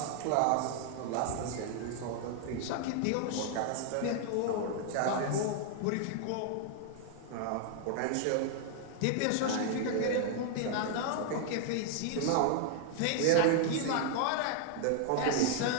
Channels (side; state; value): both; different; correlation 0.00